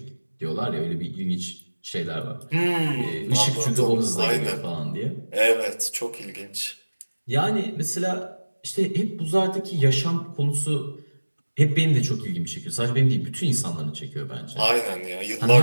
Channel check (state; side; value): inverted; both; correlation -1.00